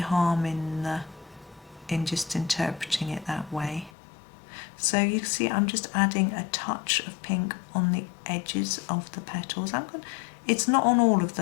in just interpreting it that way. So you see I'm just adding a touch of pink on the edges of the petals. It's not on all of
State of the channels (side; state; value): right; drops out; at 3.9 s